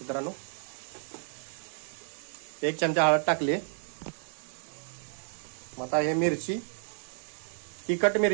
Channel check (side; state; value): left; silent; digital silence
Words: मित्रांनो. 1 चमचा हळद टाकली. आता हे मिरची, तिखट